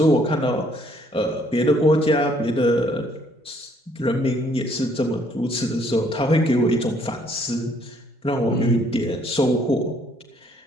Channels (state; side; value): normal; both; correlation 0.65